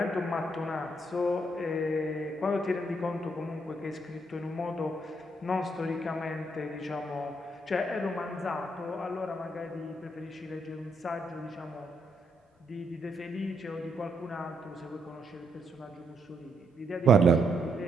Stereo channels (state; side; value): normal; both; correlation 0.76